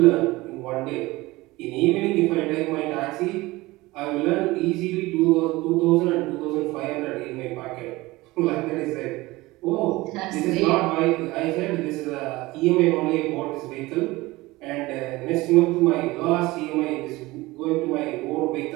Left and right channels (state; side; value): quieter; left; 20.3 dB